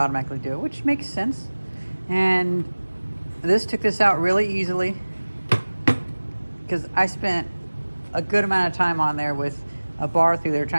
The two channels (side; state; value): both; inverted; correlation -1.00